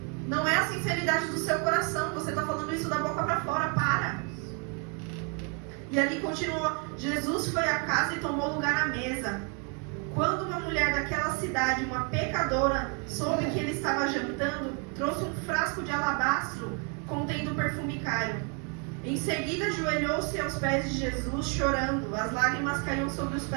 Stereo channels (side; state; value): left; quieter; 37.0 dB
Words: Não é a sinceridade do seu coração, você está falando isso da boca para fora, para! E ali continua, Jesus foi à casa e tomou lugar à mesa. Quando uma mulher daquela cidade, uma pecadora, soube que ele estava jantando, trouxe um frasco de alabastro contendo perfume caro. Em seguida ajoelhou-se aos pés de Jesus, chorando. As lágrimas caíam sobre os